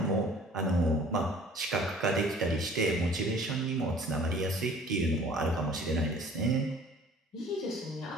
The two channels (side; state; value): both; normal; correlation 0.51